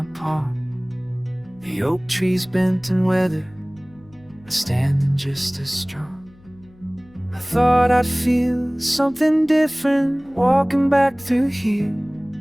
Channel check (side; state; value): left; noise; hum, 27 dB below the sound